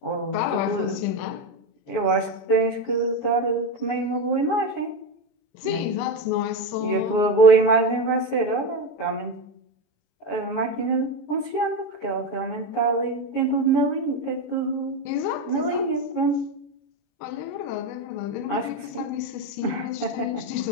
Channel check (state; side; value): late; right; 21 ms